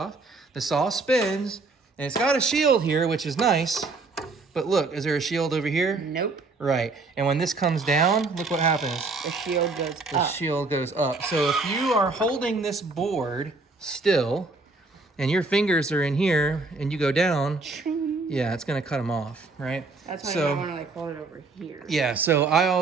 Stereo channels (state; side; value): quieter; left; 3.7 dB